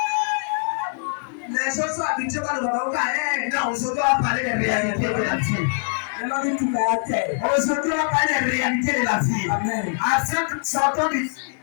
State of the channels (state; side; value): silent; right; digital silence